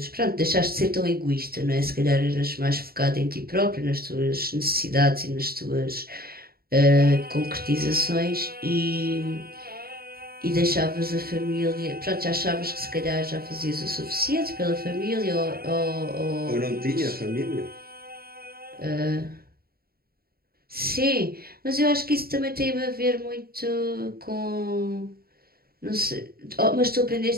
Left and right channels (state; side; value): late; left; 0.44 ms